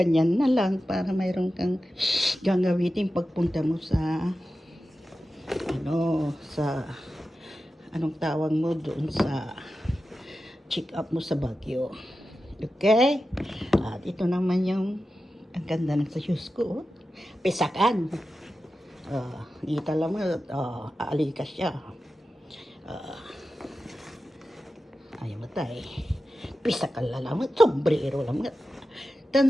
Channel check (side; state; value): both; normal; correlation 0.93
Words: na lang para mayroon kang gagamitin pagpunta mo sa anong tawag mo doon sa check up mo sa Baguio. Okay? At ito naman yung ang ganda ng sa shoes ko. Pisakan. Kita lang mo, aalikas siya. Ayaw matay. Pisakan lang mo, sombrero lang mo.